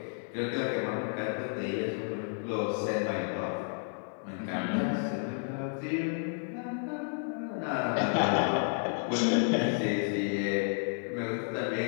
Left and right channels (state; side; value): silent; right; 57 dB below the other